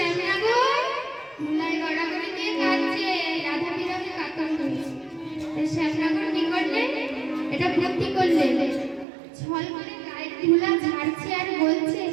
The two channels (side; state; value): left; drops out; at 9.1 s